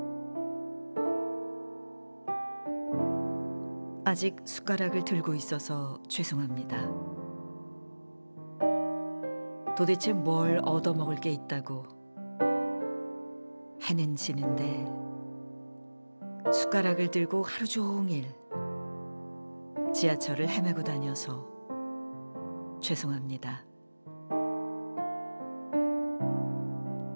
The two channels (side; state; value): both; inverted; correlation -1.00